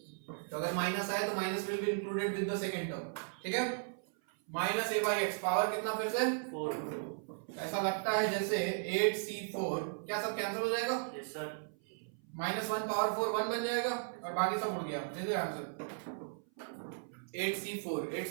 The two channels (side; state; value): left; silent; 54 dB below the other